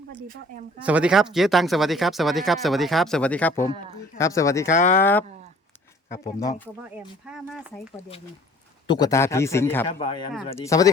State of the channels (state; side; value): normal; both; correlation 0.53